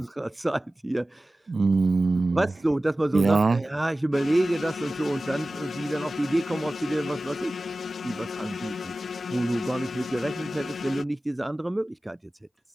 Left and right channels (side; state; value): both; normal; correlation 0.96